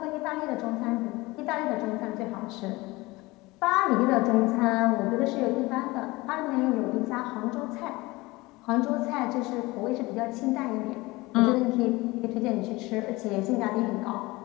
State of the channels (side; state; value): right; quieter; 21.6 dB